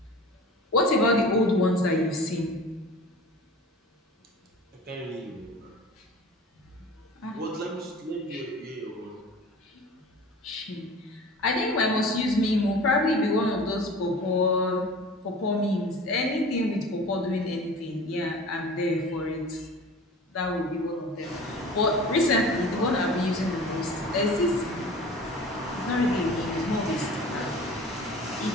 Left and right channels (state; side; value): normal; both; correlation 0.40